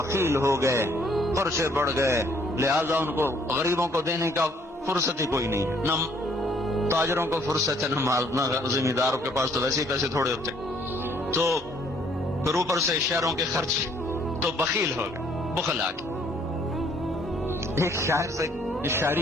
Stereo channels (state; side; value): normal; both; correlation 0.63